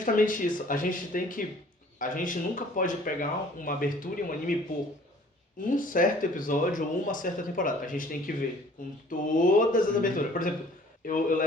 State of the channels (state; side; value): normal; both; correlation 0.54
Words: isso. A gente nunca pode pegar uma abertura e um anime por um certo episódio ou uma certa temporada. A gente tem que ver com todas as aberturas. Por exemplo, eu